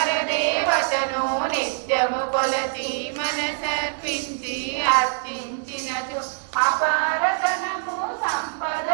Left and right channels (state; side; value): silent; left; digital silence